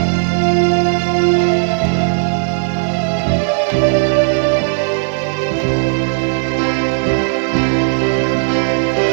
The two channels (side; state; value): left; silent; digital silence